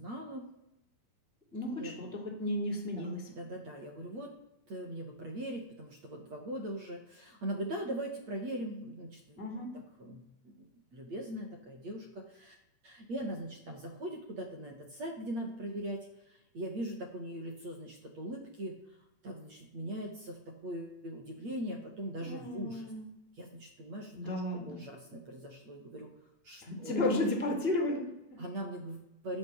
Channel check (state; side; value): late; left; 8.6 ms